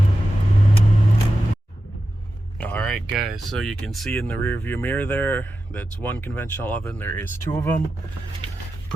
Alright guys, so you can see in the rear view mirror there, that's one conventional oven. There is two of them.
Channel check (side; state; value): both; normal; correlation 0.91